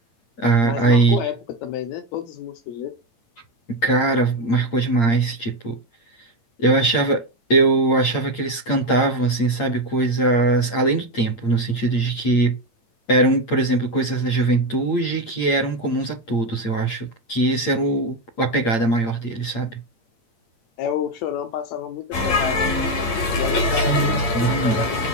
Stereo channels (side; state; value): right; late; 8.7 ms